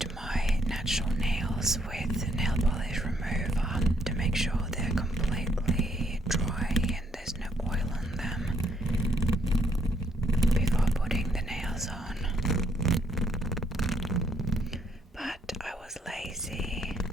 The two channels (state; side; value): normal; both; correlation 0.71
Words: my natural nails with nail polish remover to make sure they're completely dry and there's no oil on them before putting the nails on. But I was lazy